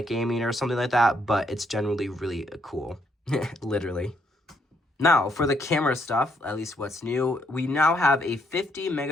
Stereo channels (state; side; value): normal; both; correlation 0.72